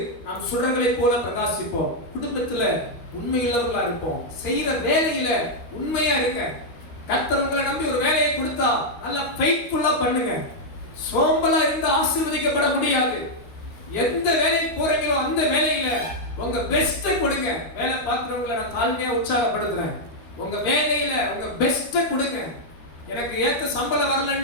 நாம் சுடர்களை போல பிரகாசிப்போம். குடும்பத்துல உண்மையுள்ளவர்களா இருப்போம். செய்யற வேலையில உண்மையா இருக்க. கர்த்தர் உங்களை நம்பி ஒரு வேலையை கொடுத்தா நல்ல ஃபெய்த்ஃபுல்லா பண்ணுங்க. சோம்பலா இருந்து ஆசீர்வதிக்கப்பட முடியாது. எந்த வேலைக்கு போறீங்களோ அந்த வேலையில உங்க பெஸ்ட கொடுங்க. வேலை பார்க்கிறவங்களை நான் தாழ்மையா உற்சாகப்படுத்துறேன். உங்க வேலையில உங்க பெஸ்ட கொடுங்க. எனக்கு ஏத்த சம்பளம்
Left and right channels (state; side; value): late; right; 13 ms